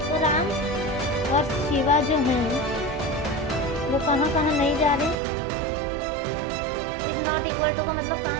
तो राम और शिवा जो हैं वो कहाँ कहाँ नहीं जा रहे? इज नॉट इक्वल टू का मतलब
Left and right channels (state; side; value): drops out; left; at 5.2 s